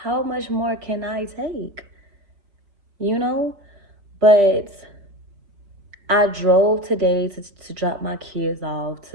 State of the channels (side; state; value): left; late; 5.0 ms